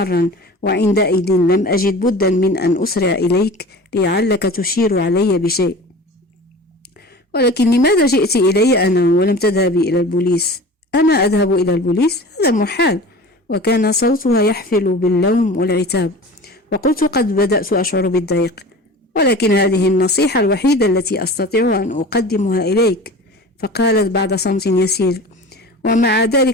وعندئذ لم أجد بدا من أن أسرع إليك لعلك تشير علي بشيء. ولكن لماذا جئت إلي أنا ولم تذهبي إلى البوليس؟ أنا أذهب إلى البوليس؟ هذا محال. وكان صوتها يحفل باللوم والعتاب. وقلت قد بدأت أشعر بالضيق، ولكن هذه النصيحة الوحيدة التي أستطيع أن أقدمها إليك. فقالت بعد صمت يسير: ومع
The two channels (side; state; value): both; normal; correlation 0.37